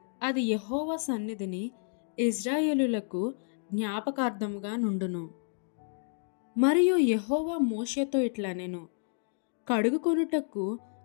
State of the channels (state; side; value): silent; right; digital silence